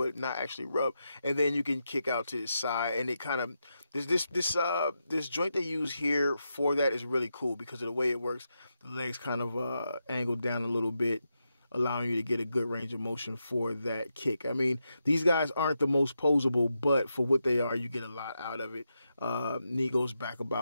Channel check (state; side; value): inverted; both; correlation -0.86